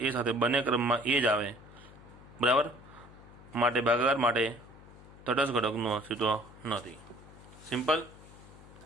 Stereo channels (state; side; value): noise; left; hum, 20 dB below the sound